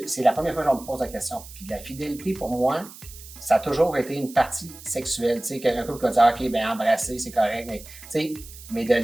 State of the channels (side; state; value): right; noise; hiss, 17 dB below the sound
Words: c'est la première fois que je me pose la question. Puis la fidélité, pour moi, ça a toujours été une partie sexuelle. Tu sais, qu'un couple peut dire, OK, ben embrasser, c'est correct, mais tu sais, mais de le